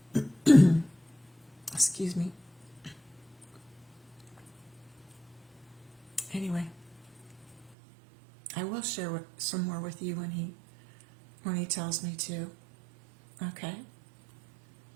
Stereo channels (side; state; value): left; drops out; at 7.8 s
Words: Excuse me. Anyway, I will share some more with you when he tells me to. Okay?